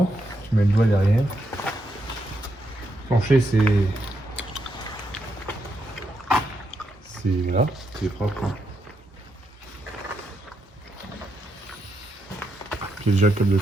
tu mets le doigt derrière. Plancher, c'est là. C'est propre. Hein. J'ai déjà le câble de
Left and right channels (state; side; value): normal; both; correlation 0.81